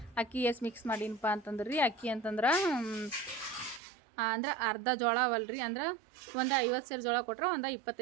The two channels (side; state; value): left; drops out; at 3.8 s